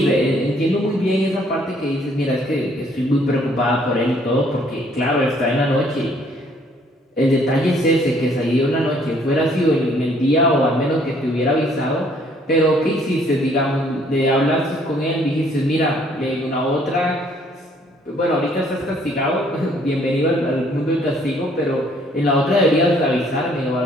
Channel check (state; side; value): normal; both; correlation 0.62